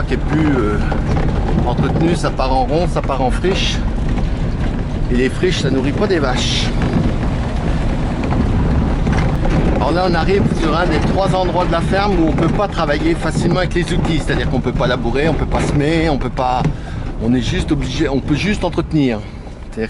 qui est plus entretenu, ça part en ronce, ça part en friche. Et les friches, ça nourrit pas des vaches. Alors là, on arrive sur un des 3 endroits de la ferme où on peut pas travailler facilement avec les outils. C'est-à-dire qu'on peut pas labourer, on peut pas semer, on peut pas... On est juste obligé, on peut juste entretenir. C'est-à-dire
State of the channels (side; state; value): both; identical; correlation 1.00